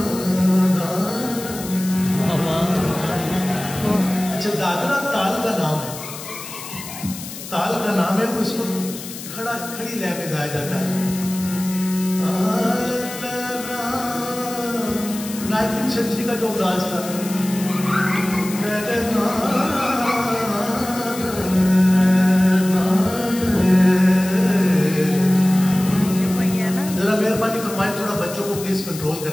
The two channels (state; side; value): noise; left; hiss, 12 dB below the sound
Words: अच्छा, दादरा ताल का नाम है, ताल का नाम है, उसको खड़ी लय में गाया जाता है। 19वीं सेंचुरी का जो अंदाज था, जरा मेहरबानी फरमाए थोड़ा बच्चों को प्लीज कंट्रोल